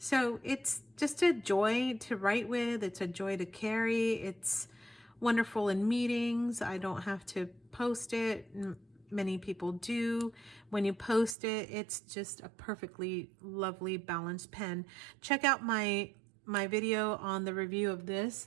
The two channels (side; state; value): left; drops out; at 11.4 s